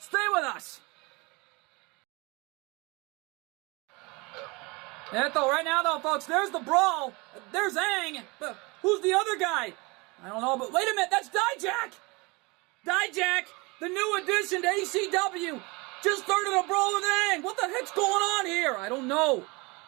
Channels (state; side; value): quieter; left; 26.4 dB